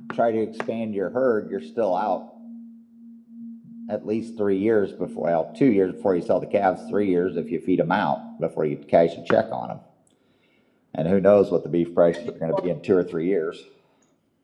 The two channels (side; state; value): both; identical; correlation 1.00